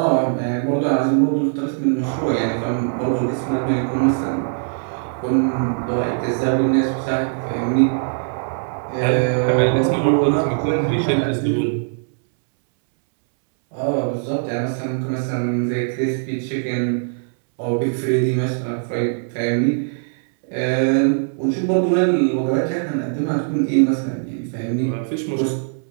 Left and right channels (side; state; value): left; silent; 65 dB below the other